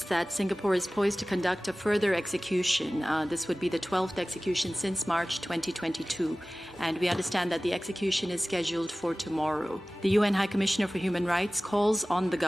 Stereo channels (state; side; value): normal; both; correlation 0.97